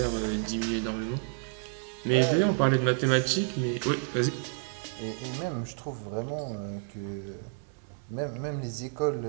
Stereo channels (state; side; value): silent; left; 56 dB below the other